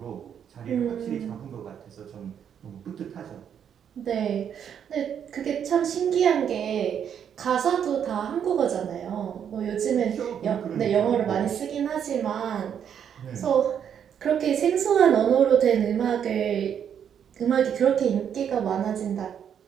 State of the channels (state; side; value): quieter; left; 8.5 dB